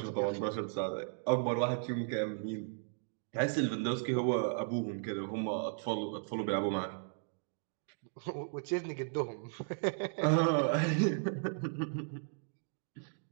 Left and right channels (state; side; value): silent; left; digital silence